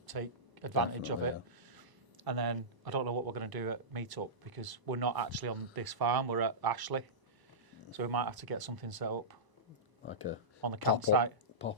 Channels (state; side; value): late; left; 1.0 ms